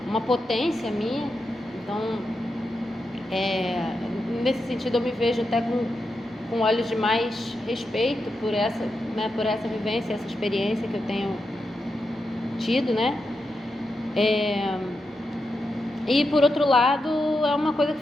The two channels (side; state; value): both; normal; correlation 0.87